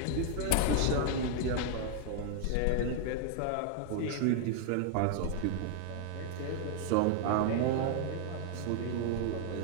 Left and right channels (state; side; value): different; both; correlation 0.00